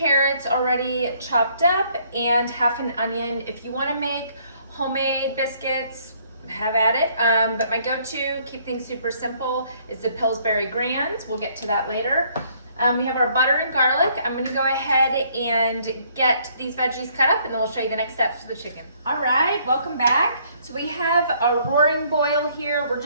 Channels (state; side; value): inverted; both; correlation -0.64